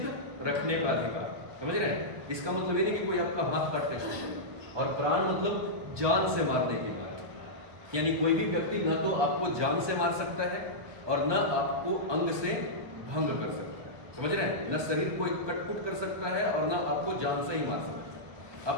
रखने का अधिकार। समझ रहे हैं? इसका मतलब ये नहीं कि कोई आपका हाथ काट के छोड़ देगा। और प्राण मतलब जान से मारने की बात, यानी कोई भी व्यक्ति न तो आपको जान से मार सकता है और न आपको अंग से भंग कर सकता है। समझ रहे हैं? न शरीर को कटकुट कर सकता है और न आपको जान से ही मार सकता है।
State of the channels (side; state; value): left; late; 1.4 ms